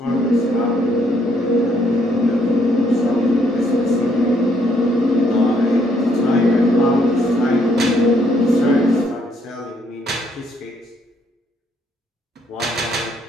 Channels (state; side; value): normal; both; correlation 0.70